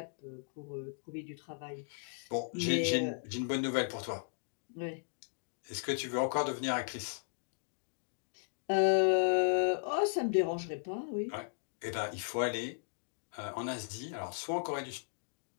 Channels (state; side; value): silent; right; digital silence